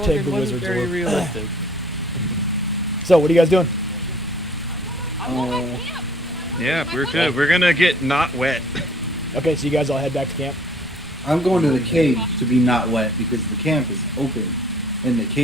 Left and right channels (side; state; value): both; normal; correlation 0.55